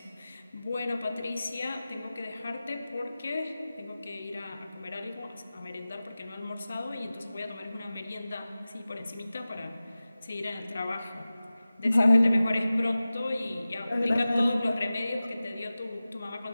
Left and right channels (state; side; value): inverted; both; correlation -0.97